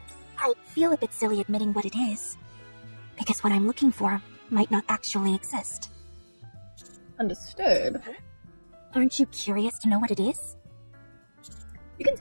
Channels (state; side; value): inverted; both; correlation -1.00